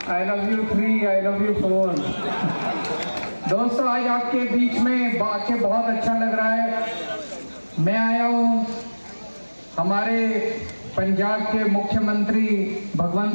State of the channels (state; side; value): inverted; both; correlation -1.00